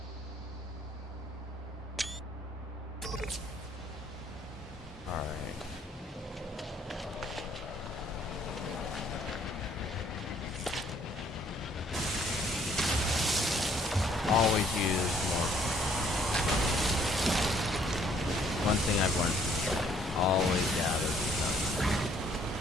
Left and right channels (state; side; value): normal; both; correlation 0.63